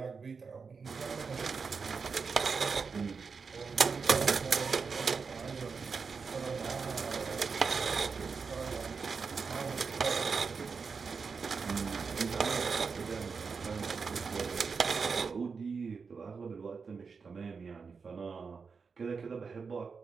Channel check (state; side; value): quieter; left; 5.2 dB